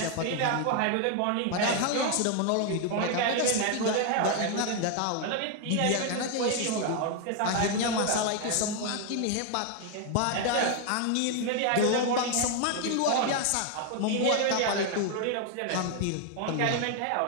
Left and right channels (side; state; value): both; different; correlation 0.00